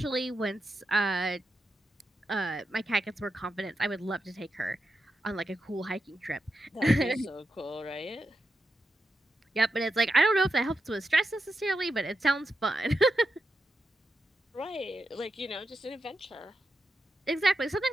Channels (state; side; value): normal; both; correlation 0.87